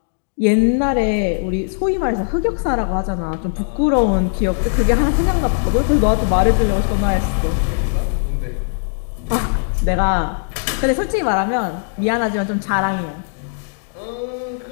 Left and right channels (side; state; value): right; silent; digital silence